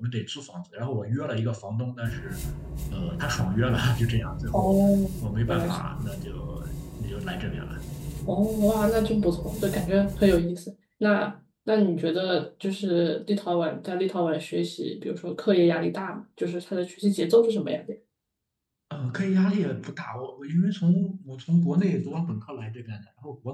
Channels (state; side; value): identical; both; correlation 1.00